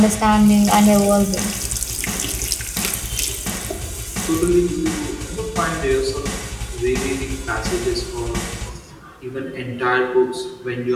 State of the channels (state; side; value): identical; both; correlation 1.00